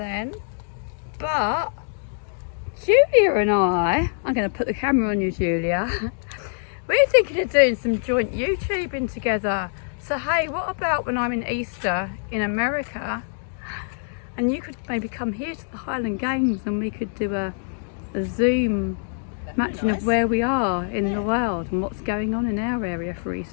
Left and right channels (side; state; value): right; silent; digital silence